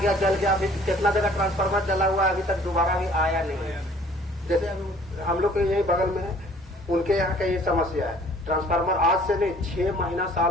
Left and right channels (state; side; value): normal; both; correlation 0.54